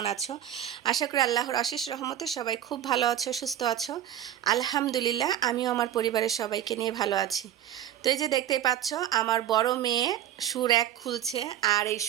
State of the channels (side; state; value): left; quieter; 11.3 dB